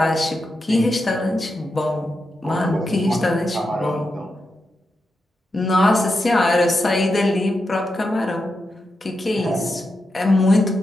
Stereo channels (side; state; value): both; normal; correlation 0.87